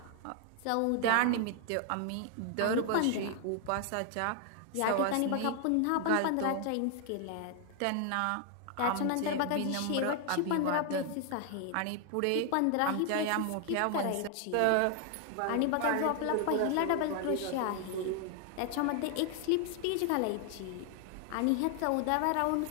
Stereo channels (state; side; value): different; both; correlation 0.00